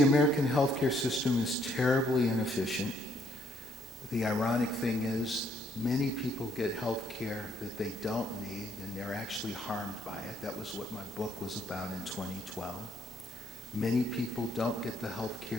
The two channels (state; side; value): normal; both; correlation 0.69